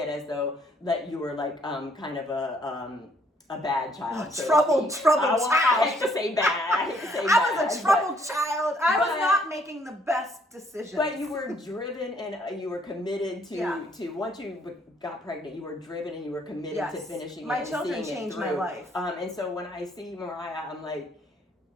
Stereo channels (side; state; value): both; normal; correlation 0.66